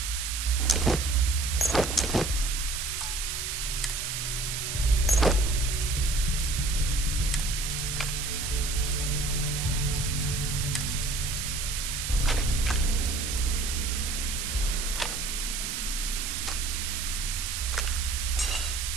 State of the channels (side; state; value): right; noise; hiss, 3 dB below the sound